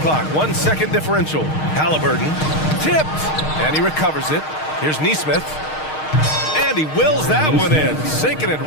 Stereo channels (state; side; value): late; right; 6.5 ms